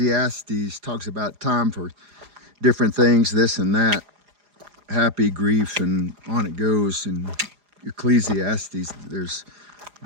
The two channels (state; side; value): late; left; 4.9 ms